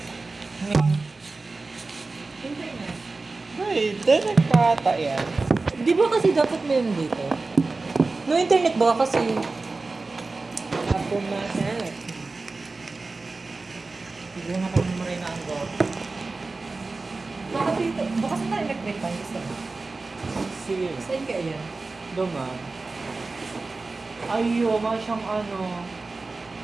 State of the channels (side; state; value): left; quieter; 3.6 dB